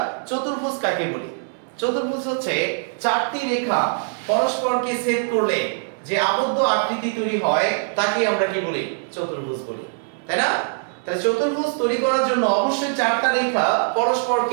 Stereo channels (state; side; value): silent; left; 64 dB below the other